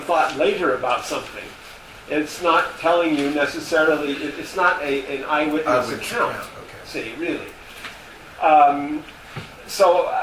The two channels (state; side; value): identical; both; correlation 1.00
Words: thought later about something. It's not telling you necessarily, it's not an eyewitness account, see, really. But